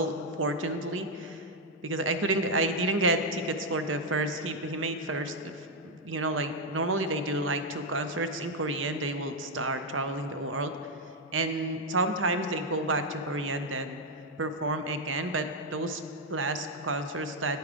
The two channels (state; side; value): normal; both; correlation 0.01